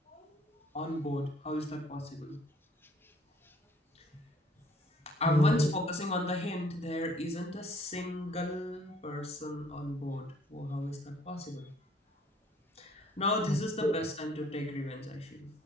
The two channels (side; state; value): both; normal; correlation 0.60